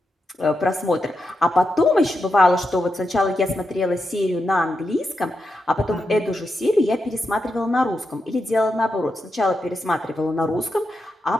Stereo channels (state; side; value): normal; both; correlation 0.86